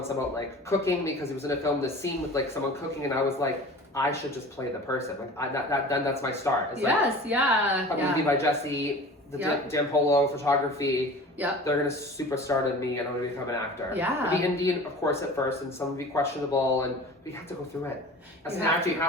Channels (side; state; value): both; normal; correlation 0.39